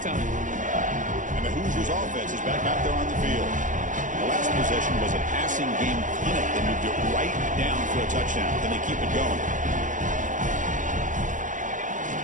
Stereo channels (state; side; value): late; left; 0.37 ms